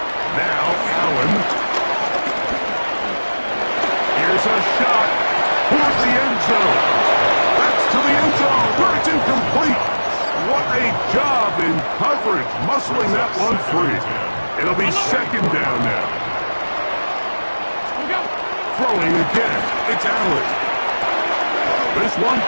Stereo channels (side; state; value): both; inverted; correlation -1.00